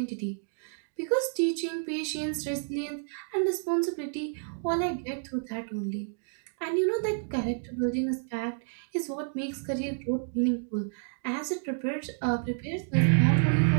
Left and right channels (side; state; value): left; silent; digital silence